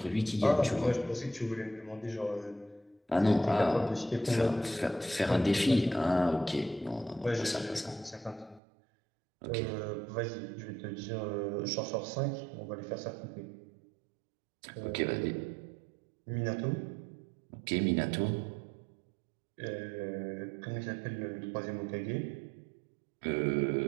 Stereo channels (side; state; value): left; drops out; at 8.6 s